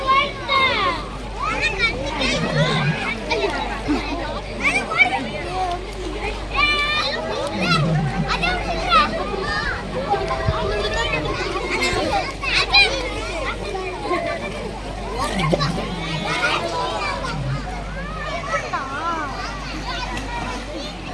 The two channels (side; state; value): both; identical; correlation 1.00